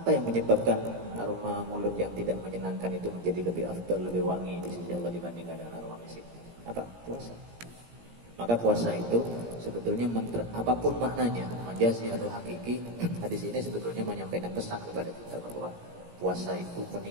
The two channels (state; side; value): late; left; 17 ms